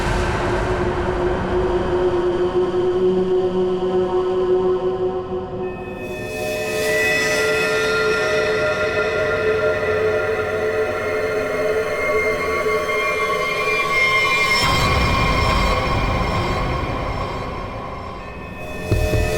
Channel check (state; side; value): identical; both; correlation 1.00